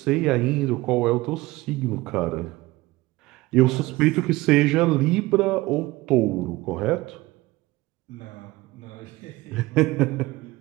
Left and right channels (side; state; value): left; quieter; 19.8 dB